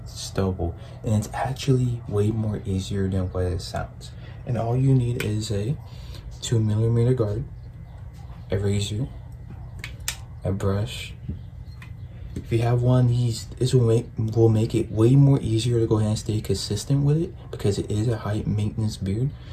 stubble, and it's actually way more easier than what it sounds. And all you need is a 2mm guard, a razor, a brush. If you have one of these, this will make it way more easier to go ahead and stay consistent with it because it is a high maintenance beard.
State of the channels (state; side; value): identical; both; correlation 1.00